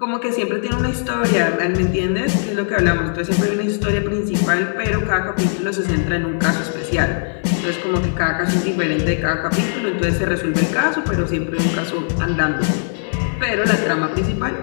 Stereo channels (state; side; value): silent; right; digital silence